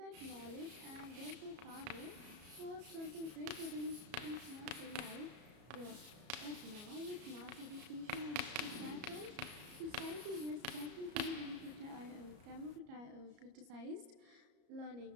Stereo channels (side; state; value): left; late; 34 ms